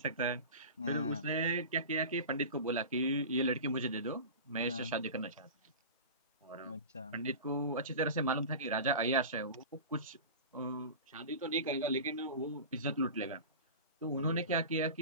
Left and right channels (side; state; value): both; inverted; correlation -0.32